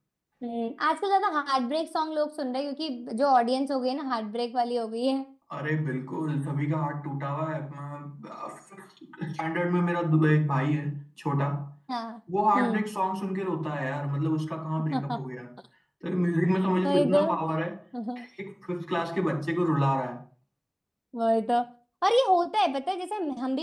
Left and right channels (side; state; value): both; identical; correlation 1.00